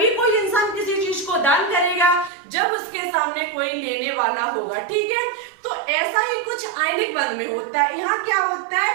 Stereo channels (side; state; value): left; drops out; at 2.3 s